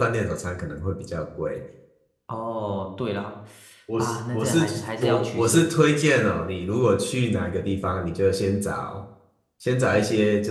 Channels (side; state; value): both; identical; correlation 1.00